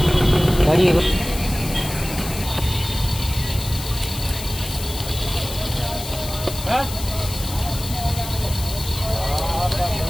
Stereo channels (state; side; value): noise; left; hiss, 10 dB below the sound